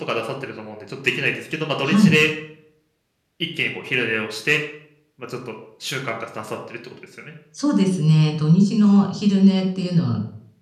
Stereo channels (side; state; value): both; identical; correlation 1.00